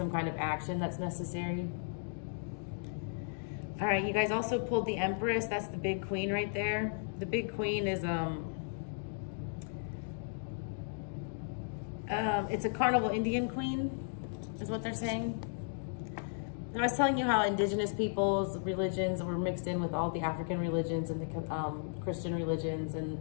kind of action that's necessary. All right, you guys also pulled the Empress. That's the big queen right there. The big queen is, it's a carnival Indian queen, is what they're saying. I was telling you how indigenous peoples' religions were mixed in with all the African religions and the Christian religions, and,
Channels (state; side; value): silent; right; digital silence